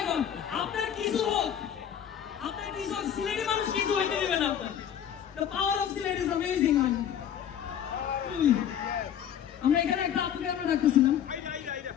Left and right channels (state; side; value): quieter; right; 9.4 dB